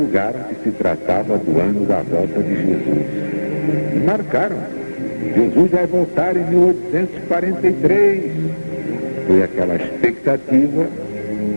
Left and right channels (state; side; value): inverted; both; correlation -1.00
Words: que se tratava do ano da volta de Jesus. E marcaram. Jesus vai voltar em 1843. Foi aquela expectativa